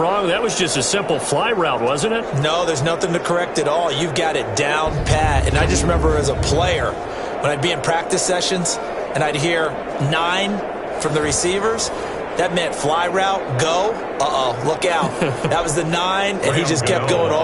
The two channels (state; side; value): identical; both; correlation 1.00